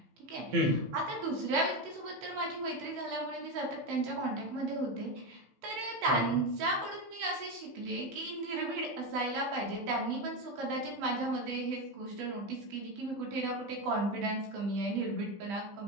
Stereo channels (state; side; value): late; left; 15 ms